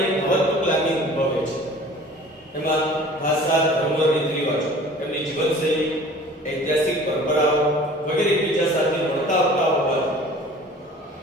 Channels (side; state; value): both; normal; correlation 0.46